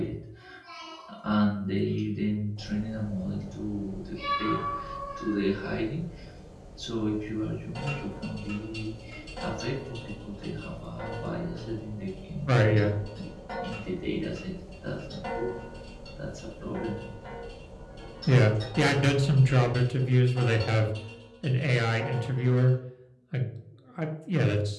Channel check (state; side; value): identical; both; correlation 1.00